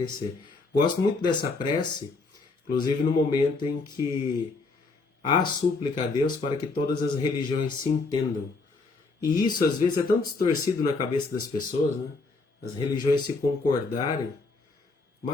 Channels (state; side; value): quieter; right; 3.8 dB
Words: Gosto muito dessa prece, inclusive no momento em que há súplica a Deus para que todas as religiões se entendam. E isso às vezes é tão distorcido na cabeça das pessoas, né? As religiões se concordarem,